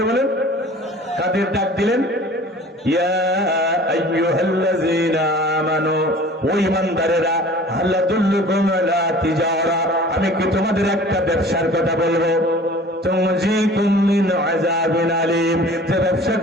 বলেন, কাদের ডাক দিলেন? ইয়া আইয়ুহাল্লাযীনা আমানু, ও ঈমানদারেরা, হাল আদুল্লুকুম আলা তিজারা, আমি কি তোমাদের একটা ব্যবসার কথা বলবো? তুনজিকুম মিন আযাবিন আলীম, যে ব্যবসা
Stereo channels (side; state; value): both; normal; correlation 0.45